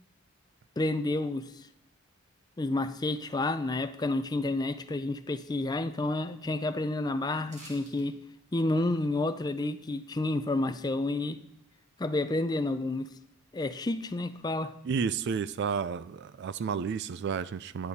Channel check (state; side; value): normal; both; correlation 0.64